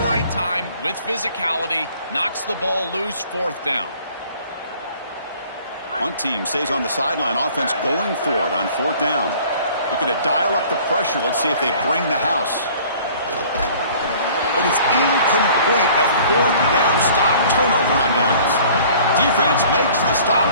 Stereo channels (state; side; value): inverted; both; correlation -0.51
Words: right time with physicality. Knocks the ball loose, 4th down. One team stays on the sideline. Offense going for it on 4th down. Looking to dial up the pressure. Let's see if they bring the house. But it's incomplete. A 4th down stop. Turnover on downs. Defense makes the stop.